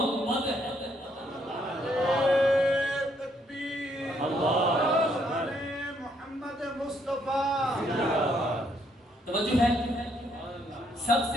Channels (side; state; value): both; normal; correlation 0.71